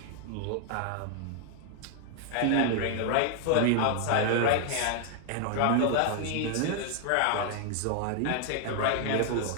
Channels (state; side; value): different; both; correlation 0.00